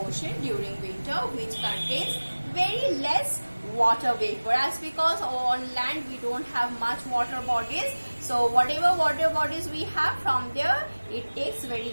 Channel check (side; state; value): both; inverted; correlation -1.00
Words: ocean during winter, which contains very less water vapor, as because on land we don't have much water bodies. So whatever water bodies we have, from there it takes